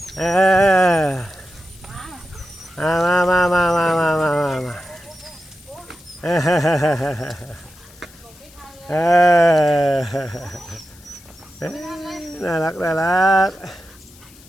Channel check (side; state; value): left; noise; hiss, 24 dB below the sound